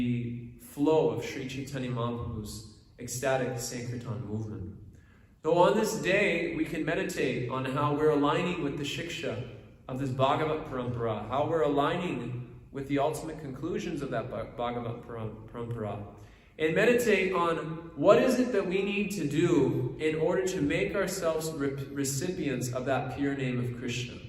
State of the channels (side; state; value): both; identical; correlation 1.00